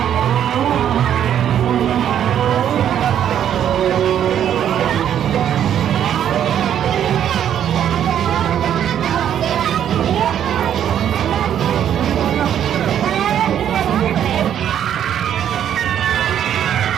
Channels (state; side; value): quieter; left; 9.9 dB